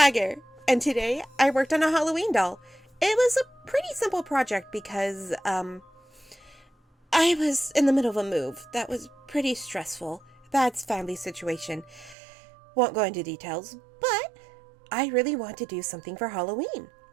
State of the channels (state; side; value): drops out; left; at 12.2 s